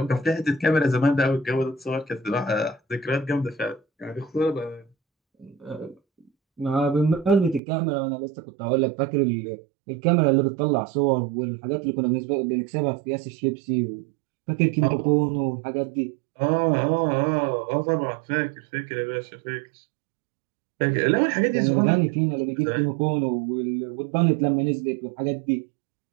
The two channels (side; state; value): left; drops out; at 7.6 s